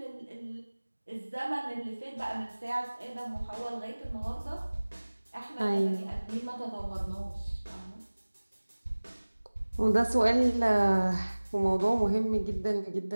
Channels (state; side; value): inverted; both; correlation -1.00